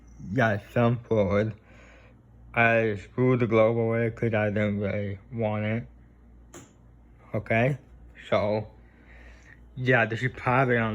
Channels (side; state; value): both; identical; correlation 1.00